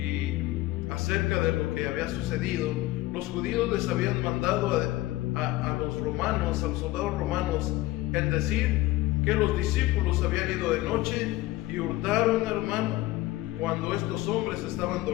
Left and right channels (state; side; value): quieter; right; 17.5 dB